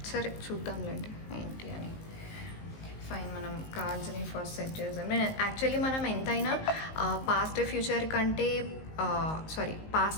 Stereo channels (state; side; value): late; right; 19 ms